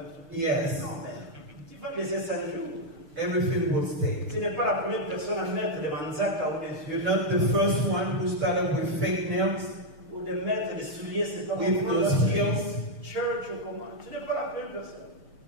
Yes. Non, mais tu vas laisser ça un jour. Everything will stay. Tu n'es pas la première personne à mettre des manzaka ou des yeux. You're not the first one who started with fake nails, Ou de mettre des souliers, c'est pas with those heels. Church ou comment. Tu n'es pas la première personne.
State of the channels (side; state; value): left; late; 6.6 ms